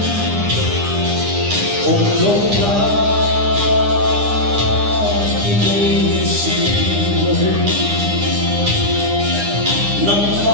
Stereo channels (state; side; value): late; left; 9.9 ms